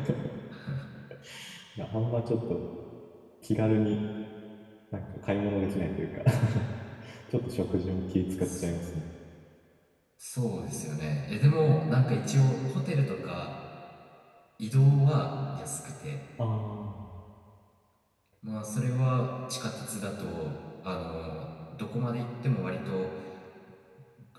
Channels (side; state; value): both; identical; correlation 1.00